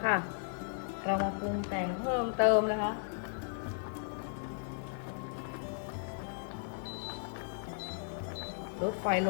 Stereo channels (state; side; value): silent; right; digital silence